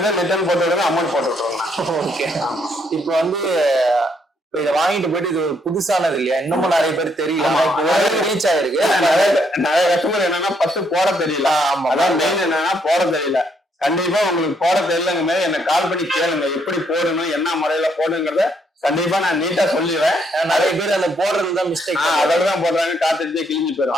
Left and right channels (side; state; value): both; normal; correlation 0.72